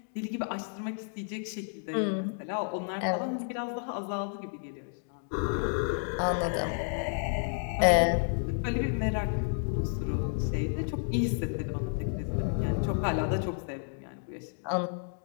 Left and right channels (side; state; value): right; silent; 57 dB below the other